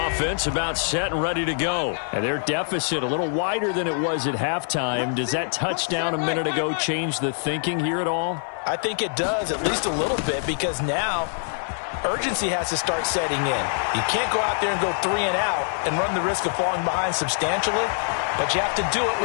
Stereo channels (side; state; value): right; silent; digital silence